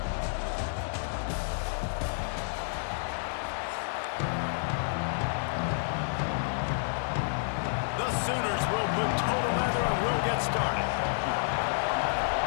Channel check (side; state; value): right; silent; digital silence